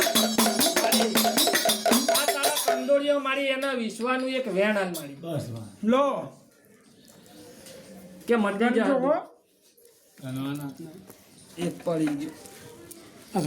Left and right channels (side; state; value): both; identical; correlation 1.00